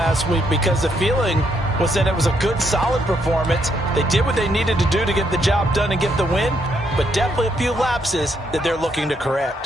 week because the feeling was that it was a good, solid performance. They did what they needed to do to get the job done and get the win, but definitely a few lapses that they're looking to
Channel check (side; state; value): both; normal; correlation 0.75